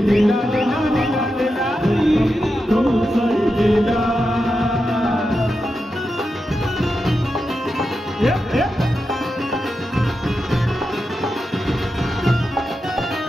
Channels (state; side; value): normal; both; correlation 0.88